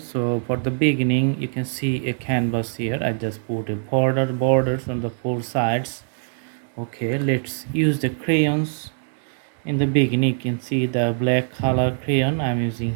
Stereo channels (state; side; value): silent; left; digital silence